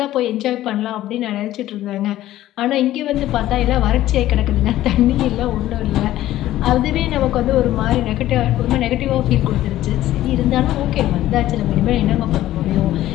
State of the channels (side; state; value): right; quieter; 14.3 dB